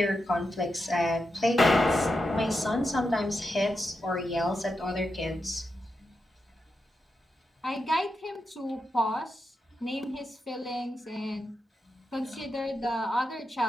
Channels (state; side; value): normal; both; correlation 0.87